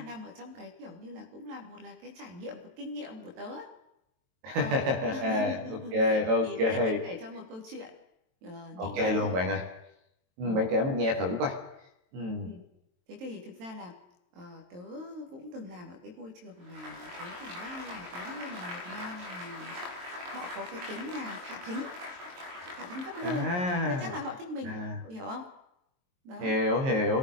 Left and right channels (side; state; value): left; late; 22 ms